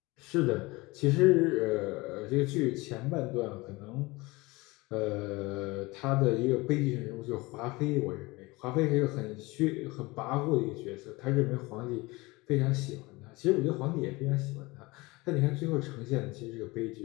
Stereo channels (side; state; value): right; quieter; 22.9 dB